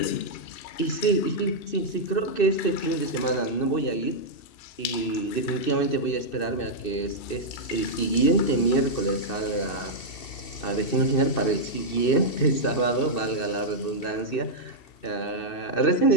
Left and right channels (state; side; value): late; right; 2.6 ms